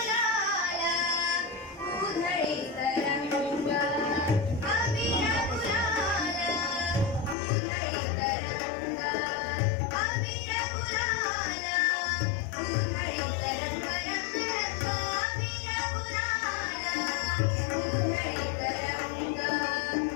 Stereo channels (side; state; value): right; drops out; at 7.4 s